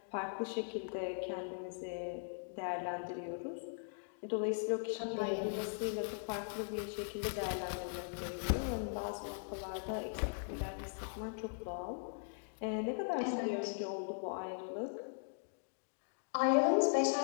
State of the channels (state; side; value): silent; right; digital silence